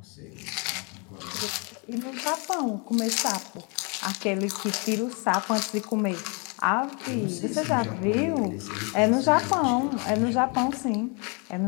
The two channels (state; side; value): quieter; right; 33.5 dB